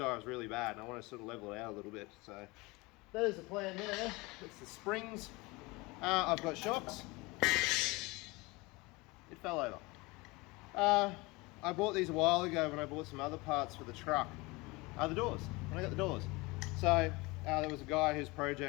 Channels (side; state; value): right; quieter; 24.1 dB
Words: really bad and I want to sort of level it out a little bit. So that is the plan there. It's the springs. I've got shocks. It fell over. I bought these a while ago when I bought some other parts for the truck. The doors, when I got the doors. So there was a guy whose